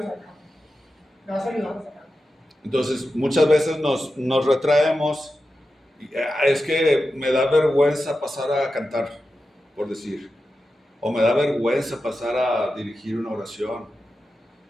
sacar, te vas ayudando a sacar. Entonces, muchas veces nos retraemos. Es que me da vergüenza pasar a cantar, por decir, o me da vergüenza pasar a dirigir una oración.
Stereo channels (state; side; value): normal; both; correlation 0.91